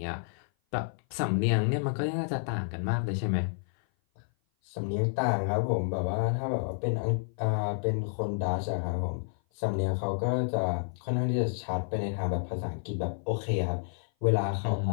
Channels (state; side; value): silent; right; 56 dB below the other